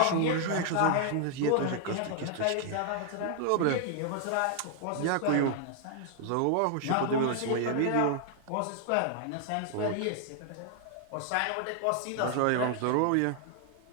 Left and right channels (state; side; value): different; both; correlation 0.00